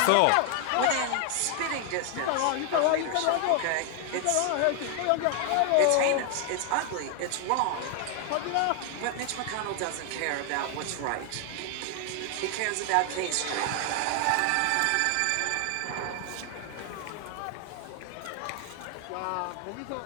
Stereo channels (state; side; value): different; both; correlation 0.00